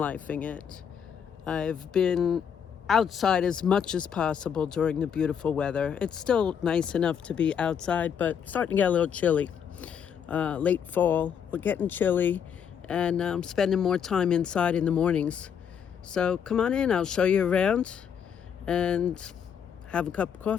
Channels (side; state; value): right; quieter; 7.9 dB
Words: it. I've been outside as much as possible during the beautiful weather. It's still nice enough to be outside, but starting to get a little chilly. Late fall, we're getting chilly, and I'm spending more time inside in the mornings. So come on in, I'll show you around and have a cup of